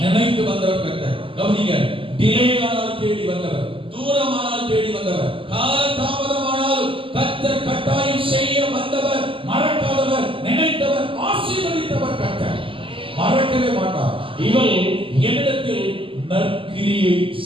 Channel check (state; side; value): late; left; 0.25 ms